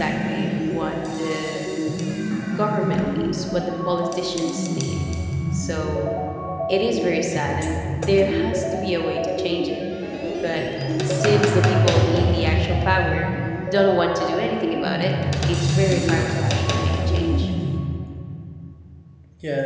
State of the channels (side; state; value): both; identical; correlation 1.00